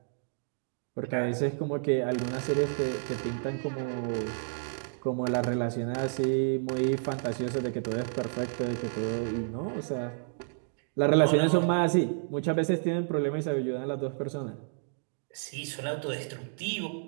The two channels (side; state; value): left; silent; digital silence